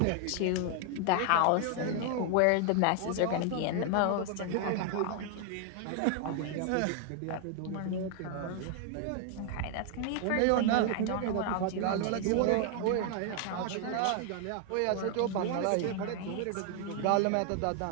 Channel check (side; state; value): both; different; correlation 0.00